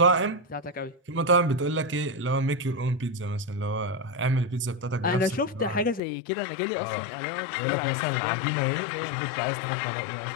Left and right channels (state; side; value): drops out; right; at 6.0 s